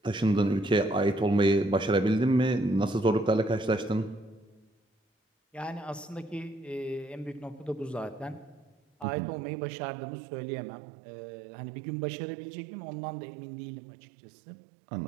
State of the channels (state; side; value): drops out; left; at 9.1 s